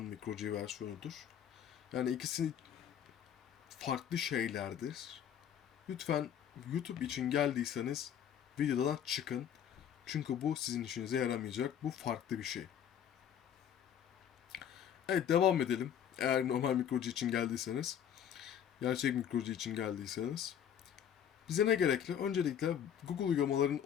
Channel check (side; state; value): right; quieter; 9.1 dB